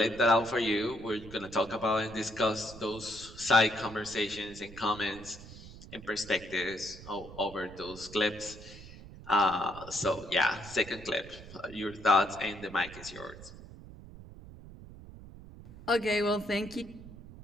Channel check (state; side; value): noise; right; rumble, 16 dB below the sound